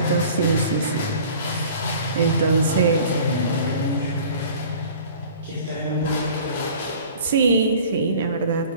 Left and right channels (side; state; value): both; inverted; correlation -0.46